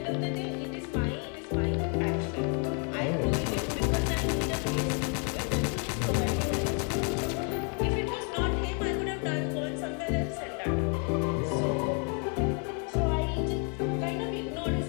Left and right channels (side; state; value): right; quieter; 39.3 dB